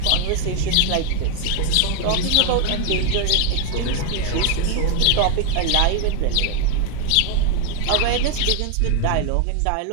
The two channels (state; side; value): different; both; correlation 0.00